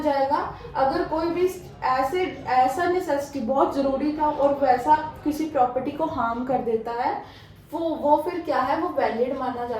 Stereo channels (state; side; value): identical; both; correlation 1.00